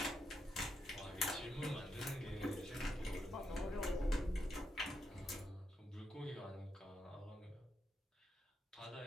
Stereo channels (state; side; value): normal; both; correlation 0.82